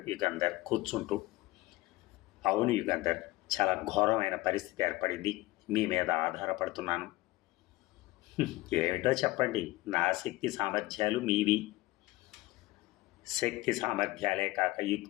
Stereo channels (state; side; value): quieter; right; 19.1 dB